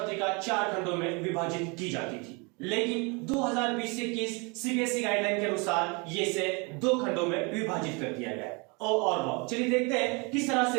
4 खंडों में विभाजित की जाती थी, लेकिन 2020-21 सीबीएसई गाइडलाइन के अनुसार ये इसे 2 खंडों में विभाजित कर दिया गया है। और चलिए देखते हैं किस तरह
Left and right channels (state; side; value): quieter; left; 30.3 dB